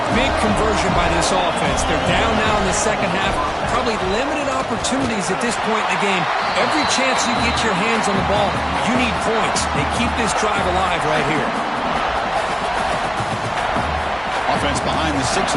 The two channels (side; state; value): both; identical; correlation 1.00